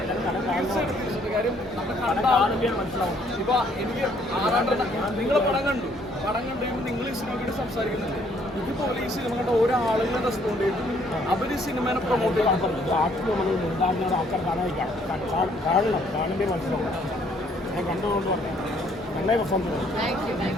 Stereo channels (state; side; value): normal; both; correlation 0.65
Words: കാര്യം മനസ്സിലാവും. ഇപ്പൊ എനിക്ക് ആറാട്ടന നിങ്ങളെ പടം കണ്ടു നിങ്ങൾ ഈ സിനിമയോട് സംസാരിക്കുന്നുണ്ട്. ഇതുപോലെ ഈ സിനിമ കണ്ട ഓരോ ആളുകളെ റെസ്പോണ്ട് ചെയ്തു, അവർ ഈ സിനിമയെ പ്രൊമോട്ട് ചെയ്യാൻ പറഞ്ഞു. ആൾക്കാർ കാണണ്ടേ മനസ്സിലാവും. ഞാൻ കണ്ടുകൊണ്ട് പറഞ്ഞു നല്ല പ്രസംഗം.